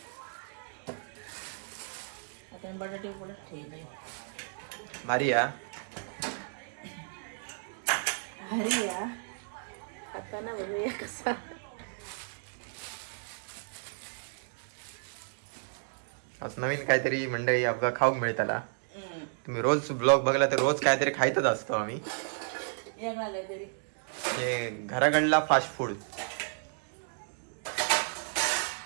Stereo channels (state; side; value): silent; left; digital silence